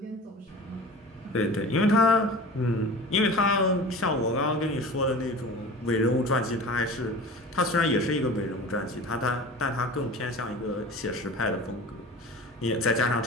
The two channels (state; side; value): normal; both; correlation 0.37